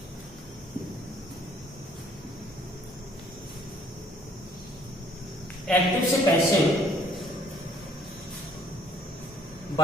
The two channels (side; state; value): both; normal; correlation 0.61